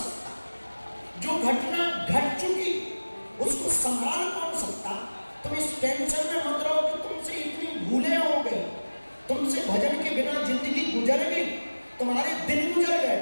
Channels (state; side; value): inverted; both; correlation -1.00